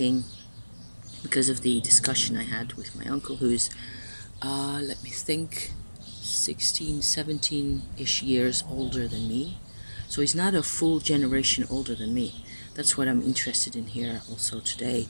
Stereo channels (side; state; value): both; inverted; correlation -1.00